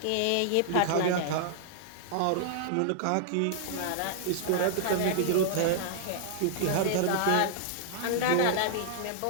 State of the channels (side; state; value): both; different; correlation -0.01